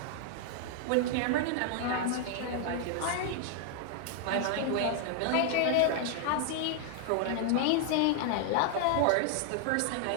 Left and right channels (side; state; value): both; different; correlation 0.00